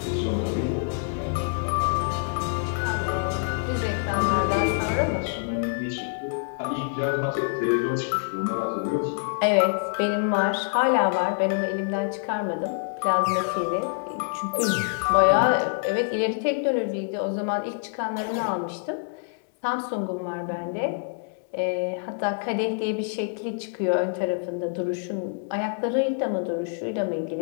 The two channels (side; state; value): right; silent; digital silence